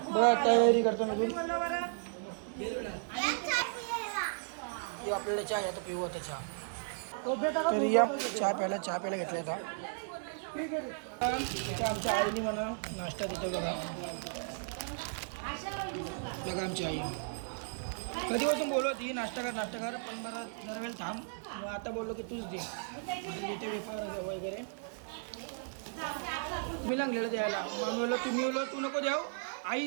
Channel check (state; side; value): silent; left; digital silence